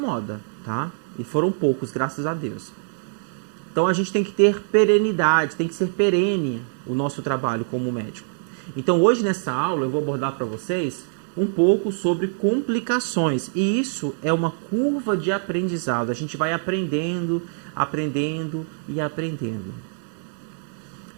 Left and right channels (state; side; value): silent; left; digital silence